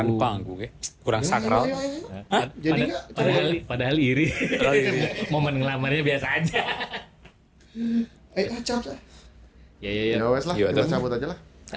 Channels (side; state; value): both; identical; correlation 1.00